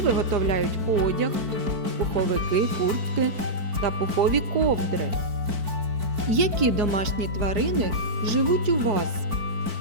виготовляють одяг, пуховики, куртки та пухові ковдри. Які домашні тварини живуть у вас?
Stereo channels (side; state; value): left; late; 4.5 ms